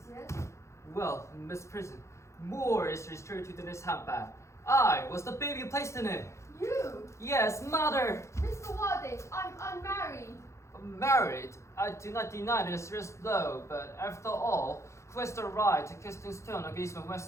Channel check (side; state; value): right; late; 0.14 ms